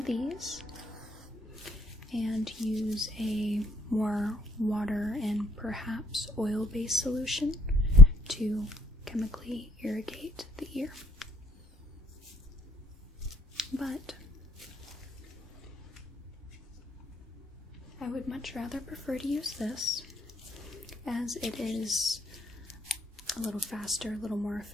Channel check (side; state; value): both; normal; correlation 0.61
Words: these and use a more water and perhaps oil-based solution to chemically irrigate the ear. But I would much rather prefer to use this, as it is a little faster, a little more